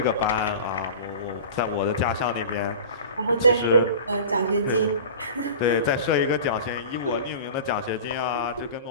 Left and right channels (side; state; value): both; inverted; correlation -0.36